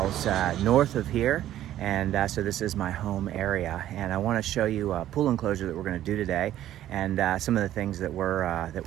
north of here, and so this is my home area. And I want to show you a pool enclosure that we're going to do today, and some of the things that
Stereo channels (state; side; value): quieter; left; 12.6 dB